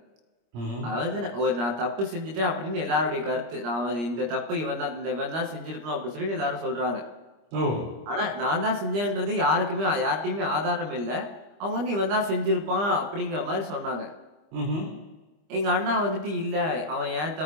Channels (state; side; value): late; left; 25 ms